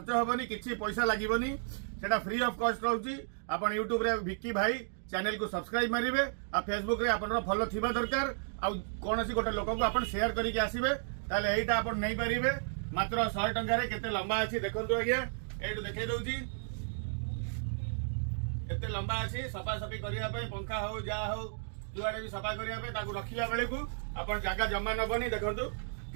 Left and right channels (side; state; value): left; silent; digital silence